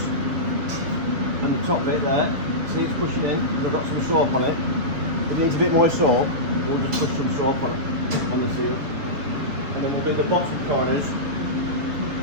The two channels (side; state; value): left; late; 6.9 ms